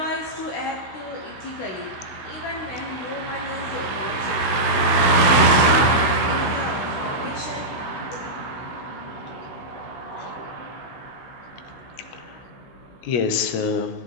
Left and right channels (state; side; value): late; right; 16 ms